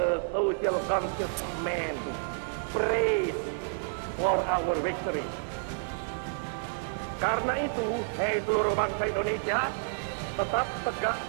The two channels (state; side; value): silent; left; digital silence